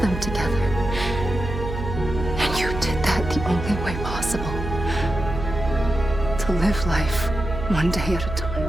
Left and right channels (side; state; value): right; noise; hum, 7 dB below the sound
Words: together. And you did that the only way possible. To live life one day at a time.